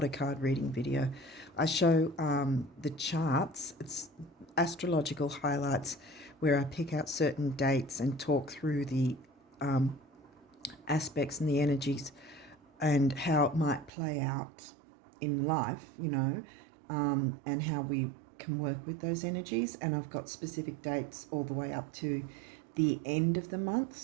a card reading video. I show the charts. It's astrological highlights where I pick out certain dates and talk through the aspects and the energies and how it might play out in life, you know, and how we can work with those energies. And I've got specific dates all the way up to the end of the month,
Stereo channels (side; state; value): left; drops out; at 13.9 s